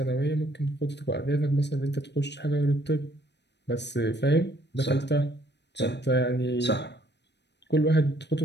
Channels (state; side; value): late; right; 0.50 ms